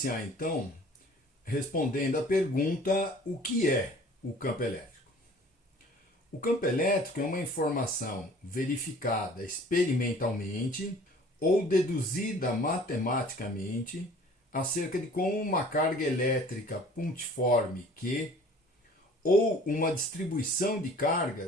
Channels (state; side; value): normal; both; correlation 0.49